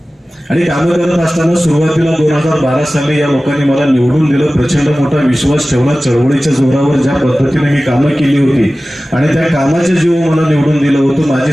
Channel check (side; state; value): both; normal; correlation 0.96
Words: आणि कामं करत असताना सुरुवातीला 2012 साली या लोकांनी मला निवडून दिलं. प्रचंड मोठा विश्वास ठेवला. चळवळीच्या जोरावर ज्या पद्धतीने मी कामं केली होती आणि त्या कामाच्या जीव मला निवडून दिलं होतं, माझी